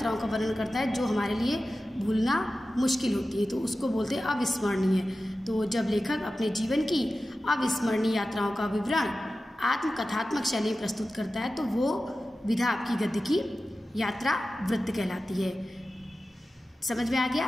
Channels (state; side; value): normal; both; correlation 0.94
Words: का वर्णन करता है जो हमारे लिए भूलना मुश्किल होती है, तो उसको बोलते हैं अविस्मरणीय। तो जब लेखक अपने जीवन की अविस्मरणीय यात्राओं का विवरण आत्मकथात्मक शैली में प्रस्तुत करता है तो वो विधा आपकी गद्य की यात्रा वृत्त कहलाती है। समझ में आ